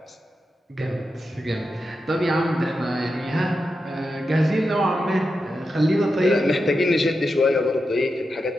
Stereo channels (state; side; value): normal; both; correlation 0.88